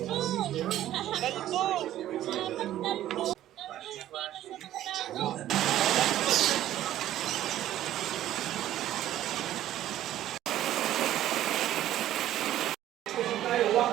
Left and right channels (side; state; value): left; quieter; 12.9 dB